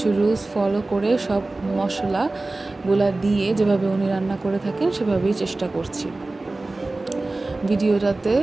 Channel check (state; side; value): quieter; left; 3.1 dB